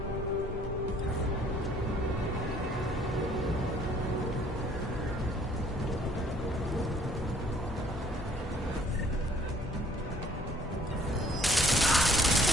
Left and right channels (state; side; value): normal; both; correlation 0.59